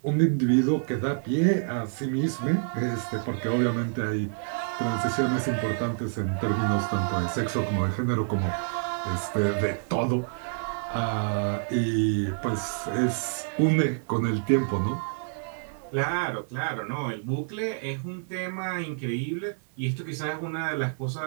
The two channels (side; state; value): left; silent; 60 dB below the other